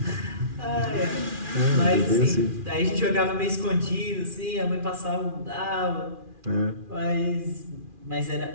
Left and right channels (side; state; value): left; late; 2.4 ms